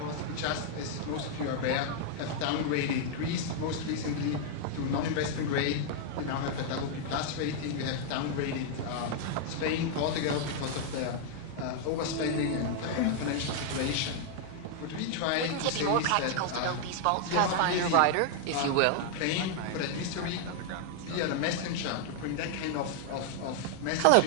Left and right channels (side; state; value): both; different; correlation 0.00